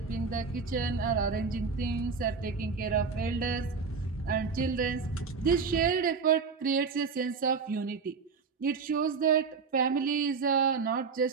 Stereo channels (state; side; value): quieter; left; 5.2 dB